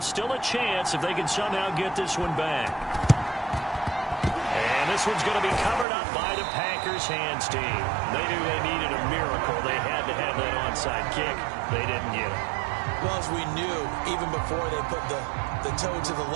Still a chance if they can somehow get this one back. And this one's going to be covered up by the Packers hands team. They knew they needed a miracle. They had to have that onside kick. They didn't get it. Well, as we knew, even before they put the toe to the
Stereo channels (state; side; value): drops out; left; at 5.9 s